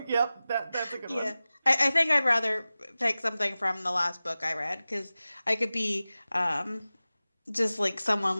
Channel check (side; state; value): both; inverted; correlation -0.96